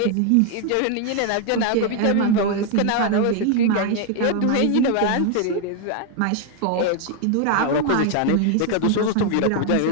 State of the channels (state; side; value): different; both; correlation 0.00